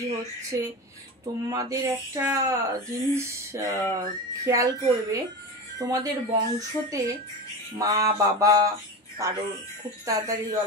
হচ্ছে, তোমাদের একটা জিনিস খেয়াল করবে, তোমাদের বংশতে মা বাবা কারোর খুব তাড়াতাড়ি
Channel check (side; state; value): both; normal; correlation 0.25